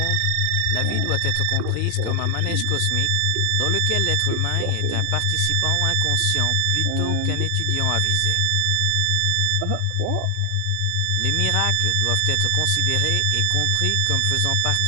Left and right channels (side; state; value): both; different; correlation 0.00